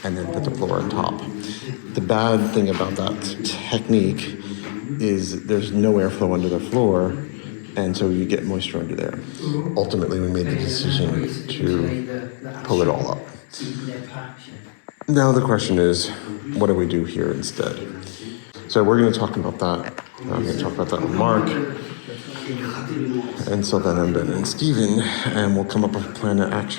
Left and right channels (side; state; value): right; silent; 64 dB below the other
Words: and then put the floor on top. The bad thing about that technique is there's no airflow under the floor, and so you get moisture under there. Ultimately, we made the decision to pull it all up. Now the question is, what do we do here instead? So we're going to talk about that. I'm going to talk about that with Mark, and so then Ben and Steven, and we'll come up with a plan of